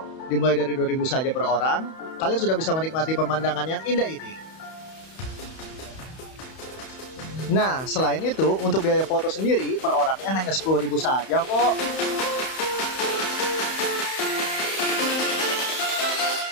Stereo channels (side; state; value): right; late; 31 ms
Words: Dimulai dari 2.000 saja per orang, kalian sudah bisa menikmati pemandangan yang indah ini. Nah, selain itu, untuk biaya foto sendiri per orangnya hanya 10.000 saja kok.